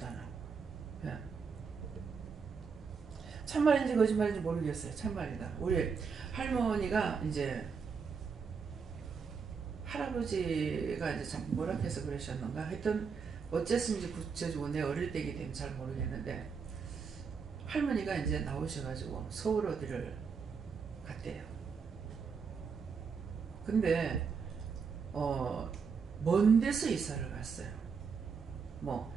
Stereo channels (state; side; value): quieter; left; 5.7 dB